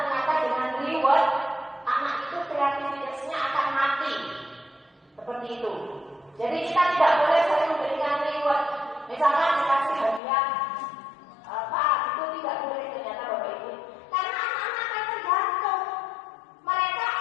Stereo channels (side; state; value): right; drops out; at 10.2 s